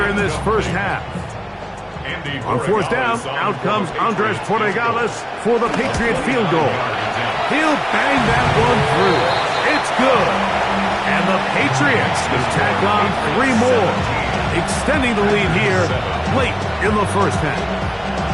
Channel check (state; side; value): identical; both; correlation 1.00